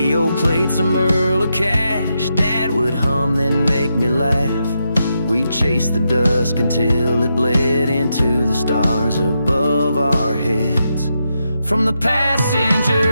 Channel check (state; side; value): inverted; both; correlation -0.84